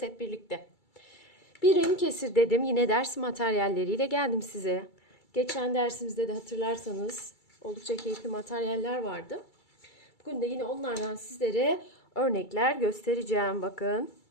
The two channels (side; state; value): right; late; 2.3 ms